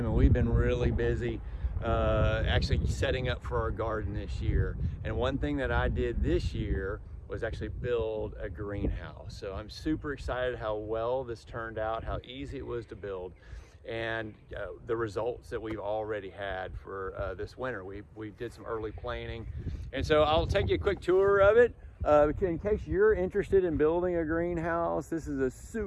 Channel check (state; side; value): identical; both; correlation 1.00